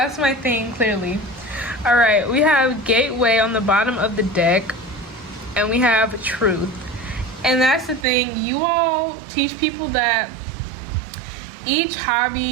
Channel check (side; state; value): left; drops out; at 8.1 s